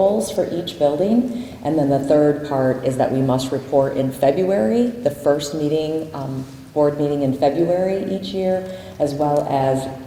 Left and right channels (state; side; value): identical; both; correlation 1.00